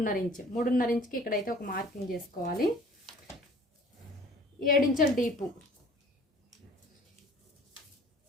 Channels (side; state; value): both; normal; correlation 0.50